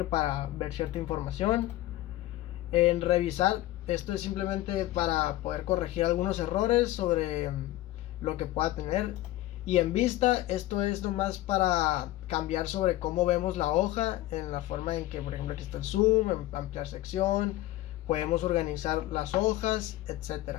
para ver cierta información. En revisar, esto es simplemente para poder corregir algunos errores sobre lo que pueda tener. Y en vista, esto es nomás para cambiar sobre cómo vemos la hoja, en la forma en que, por ejemplo, aquí está el zoom, ampliar sección, podemos organizar las hojas,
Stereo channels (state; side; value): quieter; right; 16.0 dB